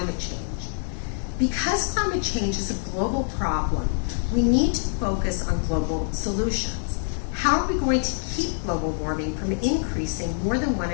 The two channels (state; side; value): silent; right; 62 dB below the other